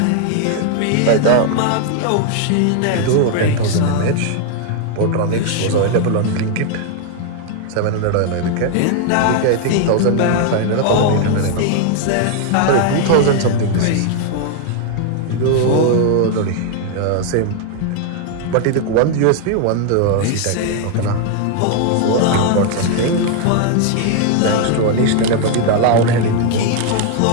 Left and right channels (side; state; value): both; different; correlation 0.00